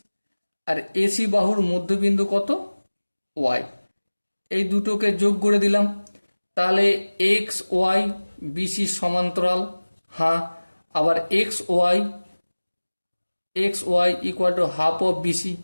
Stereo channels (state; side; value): inverted; both; correlation -1.00